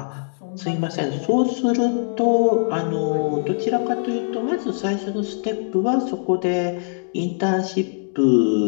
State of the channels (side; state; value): right; silent; digital silence